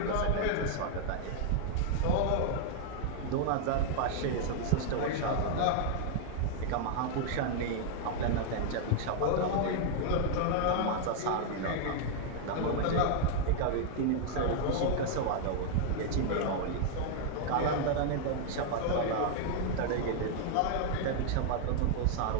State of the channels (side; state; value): both; different; correlation 0.00